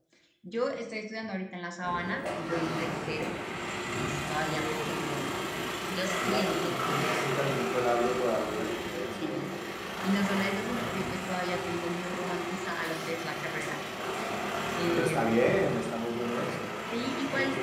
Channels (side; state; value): both; identical; correlation 1.00